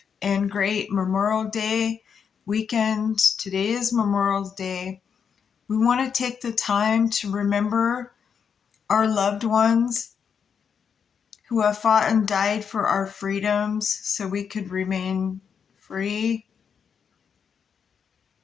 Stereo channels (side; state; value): right; quieter; 6.9 dB